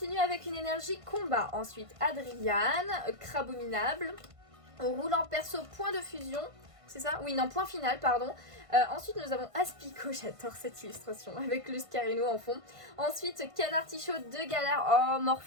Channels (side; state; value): left; late; 1.5 ms